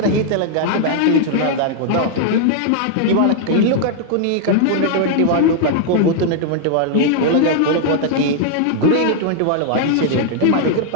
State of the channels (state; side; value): different; both; correlation 0.00